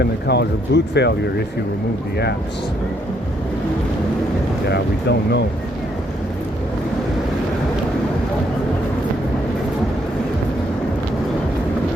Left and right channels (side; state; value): both; normal; correlation 0.72